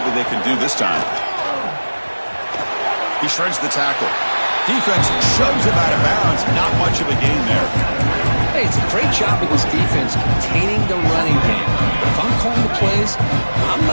they can do this time. He shreds the tackle. Defense shoves him out of bounds. Not much of a gain there. Hey, it's a great job of this defense containing the running game. But if I'm calling the plays, I'm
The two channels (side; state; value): both; inverted; correlation -1.00